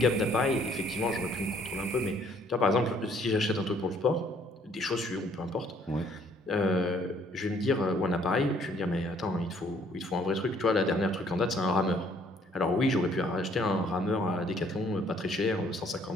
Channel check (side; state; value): both; normal; correlation 0.62